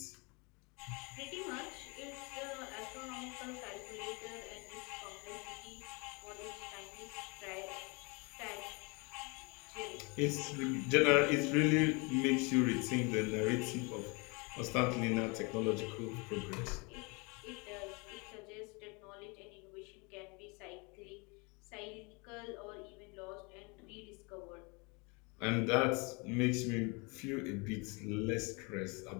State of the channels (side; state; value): right; quieter; 29.6 dB